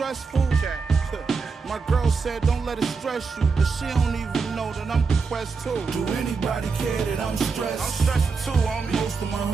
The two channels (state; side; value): quieter; left; 4.8 dB